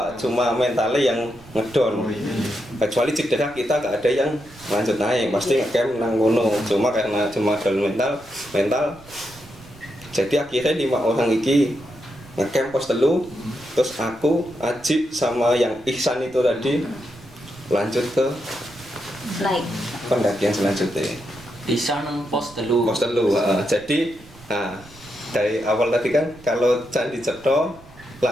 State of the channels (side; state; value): right; noise; rumble, 23 dB below the sound